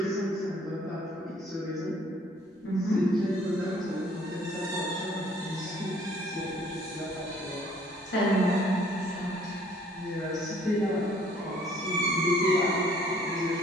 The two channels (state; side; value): normal; both; correlation 0.59